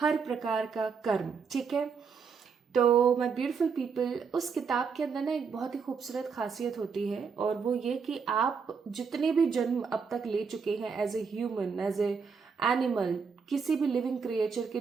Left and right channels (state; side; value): quieter; left; 5.7 dB